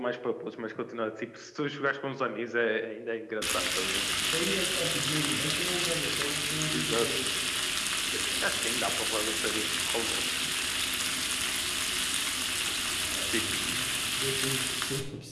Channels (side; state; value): both; identical; correlation 1.00